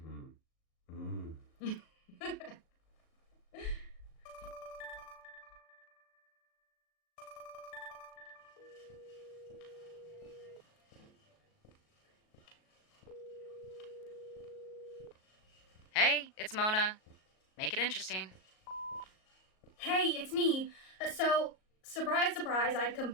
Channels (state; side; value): late; right; 37 ms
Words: Hey, it's Mona. Make it interesting. Hey, it's me. So, surprise, surprise, I